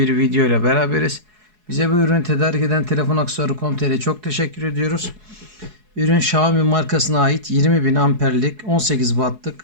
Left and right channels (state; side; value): late; left; 4.7 ms